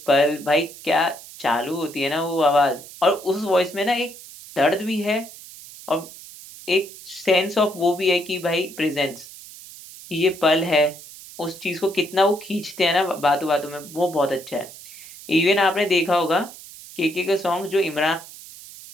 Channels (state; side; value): noise; right; hiss, 17 dB below the sound